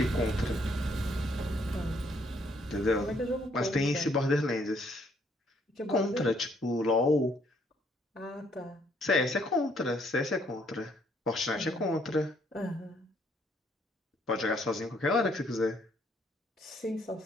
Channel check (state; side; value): normal; both; correlation 0.68